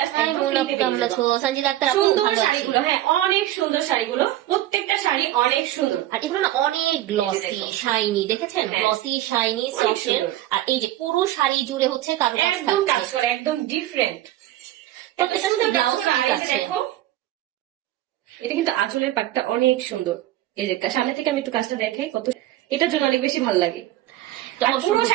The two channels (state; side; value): quieter; left; 14.4 dB